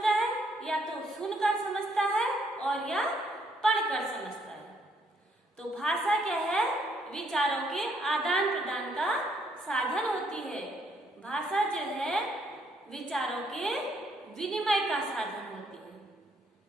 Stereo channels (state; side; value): normal; both; correlation 0.70